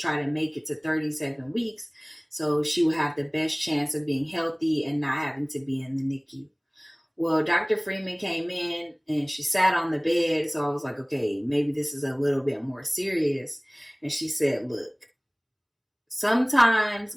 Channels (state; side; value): identical; both; correlation 1.00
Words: to make it to 37 weeks so she would have the best chance of being healthy and not having to be in the NICU. Well, Dr. Freeman came in and she sat on the bed. So I was like, okay, maybe this is a little bit more serious. And she said, look, sometimes